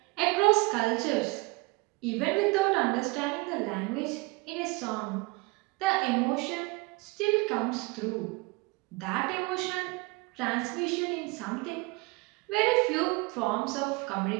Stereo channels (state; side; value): quieter; left; 25.7 dB